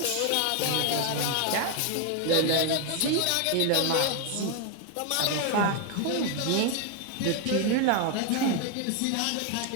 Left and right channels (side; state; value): both; different; correlation 0.01